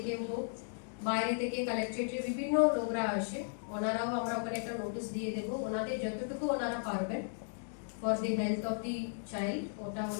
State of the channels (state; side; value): silent; right; digital silence